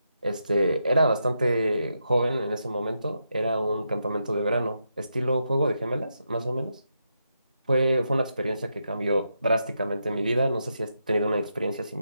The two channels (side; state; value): both; inverted; correlation -0.83